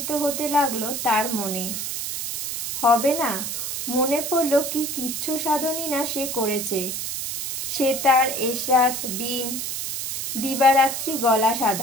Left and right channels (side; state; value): right; noise; hiss, 4 dB below the sound